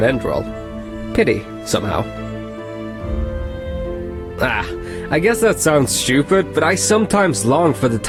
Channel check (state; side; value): identical; both; correlation 1.00